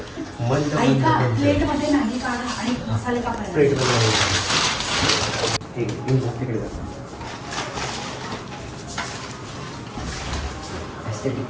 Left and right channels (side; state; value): both; identical; correlation 1.00